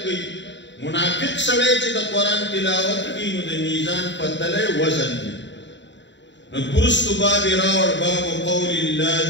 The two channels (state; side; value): late; right; 0.52 ms